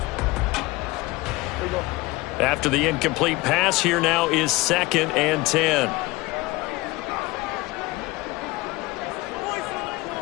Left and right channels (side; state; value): right; quieter; 21.1 dB